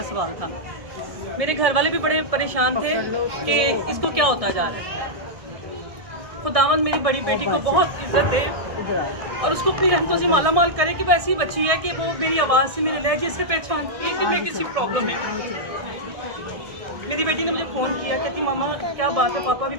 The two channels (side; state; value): left; late; 1.6 ms